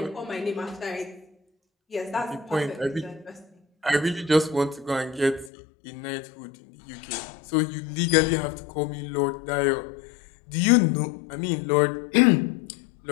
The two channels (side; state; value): right; drops out; at 5.5 s